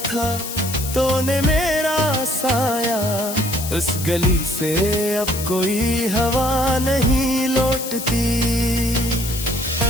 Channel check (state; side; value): noise; left; hiss, 8 dB below the sound